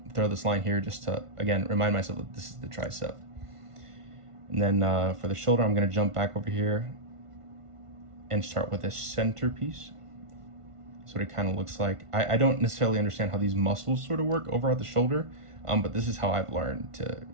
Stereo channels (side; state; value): left; late; 1.5 ms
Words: throw this line here just to, again, remind myself that this is the tricep. And then for the shoulder, I'm gonna jump back over here and start with a centerpiece. So it kind of looks like, I don't necessarily understand how these muscles sort of work over at the shoulder, but this is how I've learned to